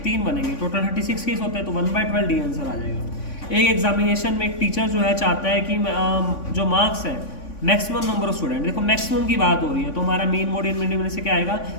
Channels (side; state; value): right; late; 3.5 ms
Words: 3 बनेंगे, टोटल 36 केस होते हैं, तो 1/12 डी आंसर आ जाएगा। एक एग्जामिनेशन में एक टीचर जो है चाहता है कि जो मार्क्स है मैक्सिमम नंबर ऑफ स्टूडेंट, देखो मैक्सिमम की बात हो रही है, तो हमारा मीन मोड इन मीडियम में से क्या आएगा,